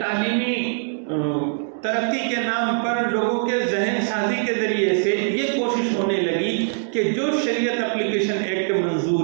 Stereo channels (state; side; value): silent; left; digital silence